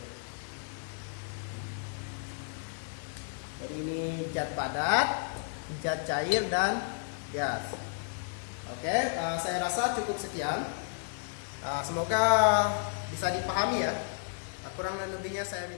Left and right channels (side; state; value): right; silent; digital silence